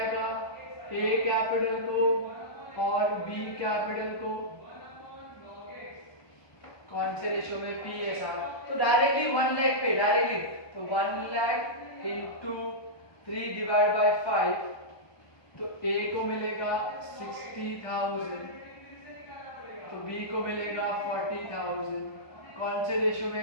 ए कैपिटल को और बी कैपिटल को। कौन से रेशियो में? पीएसआर। तो डायरेक्टली 1 लाख पे डायरेक्टली, तो 1 लाख इंटू 3 डिवाइड बाय 5, तो ए को मिलेगा 60,000, तो बी को मिलेगा 40,000। कौन से रेशियो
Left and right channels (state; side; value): late; right; 1.2 ms